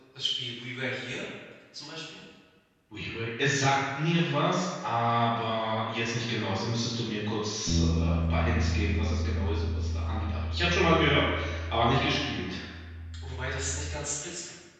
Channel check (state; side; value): identical; both; correlation 1.00